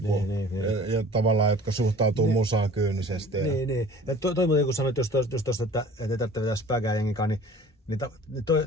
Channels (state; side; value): normal; both; correlation 0.46